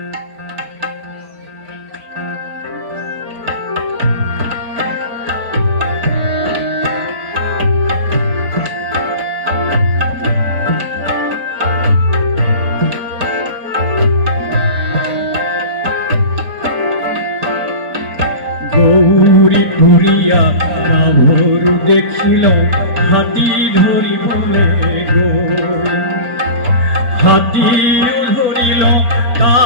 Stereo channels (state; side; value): late; left; 4.3 ms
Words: গৌরী ঘুরিয়া গাভরু দেখিল হাতী ধরিবলে গো হাতী ধরিল